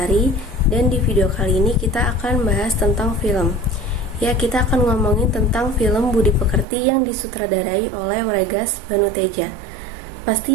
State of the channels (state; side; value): drops out; left; at 6.7 s